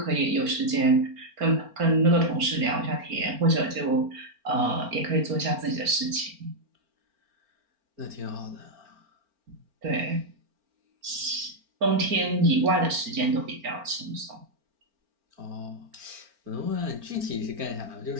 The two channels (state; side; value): late; left; 4.4 ms